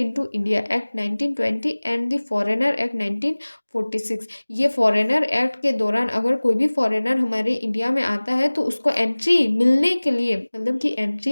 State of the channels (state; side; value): inverted; both; correlation -1.00